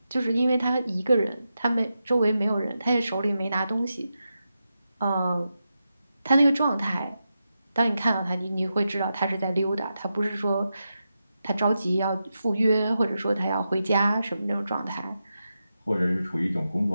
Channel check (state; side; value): inverted; both; correlation -0.89